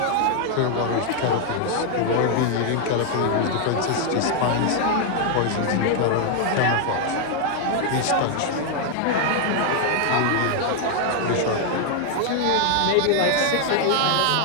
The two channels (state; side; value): different; both; correlation 0.00